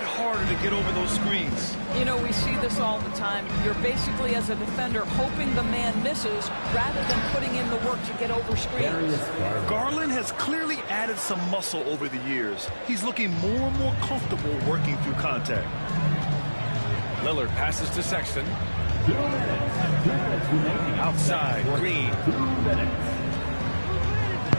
to get over those screens. You know, we see this all the time. You're basically, as a defender, hoping the man misses rather than putting in the work to get over screens. Garland has clearly added some muscle over the years. He's looking more and more comfortable working through contact. Lillard passes to Sexton. Outside, Green.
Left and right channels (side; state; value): both; inverted; correlation -1.00